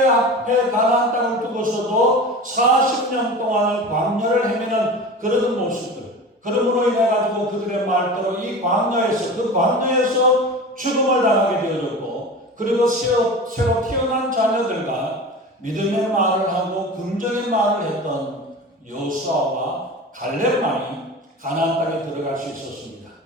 가나안 땅을 두고서도 40년 동안을 광야를 헤매는 그런 모습들. 그러므로 인해 가지고 그들의 말대로 이 광야에서 그 광야에서 죽음을 당하게 되어졌고 그리고 새로 태어난 자녀들과 믿음의 말을 하고 긍정의 말을 했던 여호수아와 갈렙만이 가나안 땅에 들어갈 수 있었습니다.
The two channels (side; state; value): both; normal; correlation 0.33